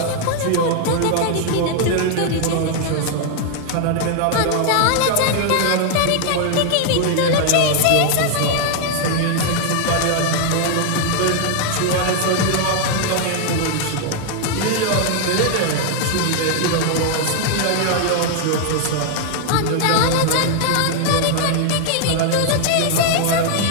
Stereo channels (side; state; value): both; different; correlation 0.00